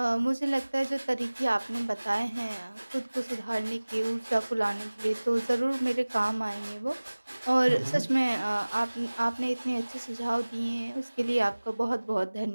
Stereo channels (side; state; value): both; inverted; correlation -1.00